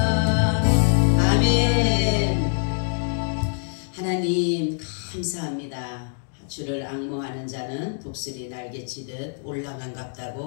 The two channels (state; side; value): silent; right; 62 dB below the other